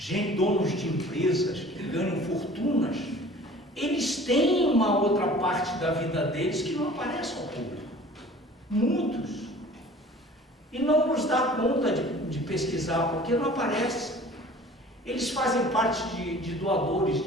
donos de empresas que ganham fortunas, eles têm uma outra parte da vida deles que não aparece ao público. Muitos. E não nos dá conta de pesquisar, porque não aparece. Eles fazem parte de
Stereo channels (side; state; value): both; normal; correlation 0.46